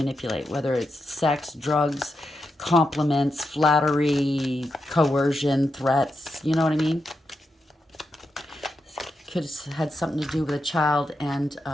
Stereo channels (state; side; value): normal; both; correlation 0.86